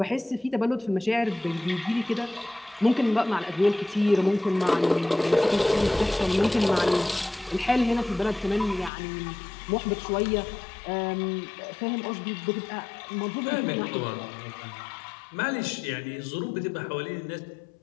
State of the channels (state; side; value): drops out; right; at 8.9 s